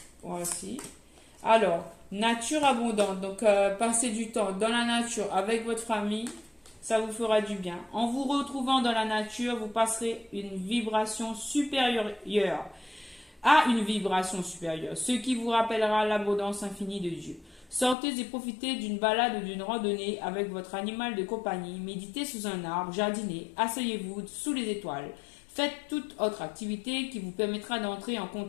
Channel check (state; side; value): drops out; right; at 17.9 s